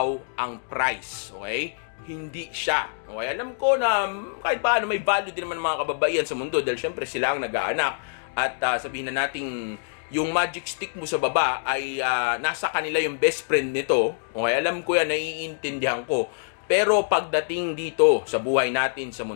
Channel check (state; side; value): silent; right; digital silence